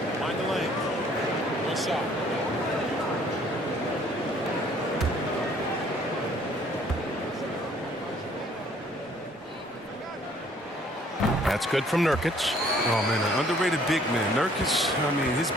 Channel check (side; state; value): both; normal; correlation 0.60